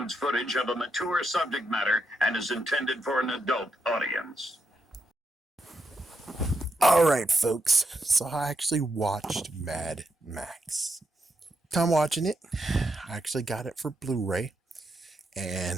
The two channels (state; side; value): normal; both; correlation 0.82